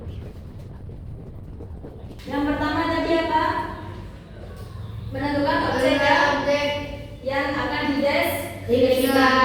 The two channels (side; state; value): both; identical; correlation 1.00